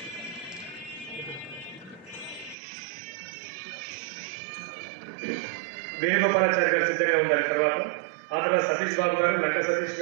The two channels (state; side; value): drops out; left; at 2.6 s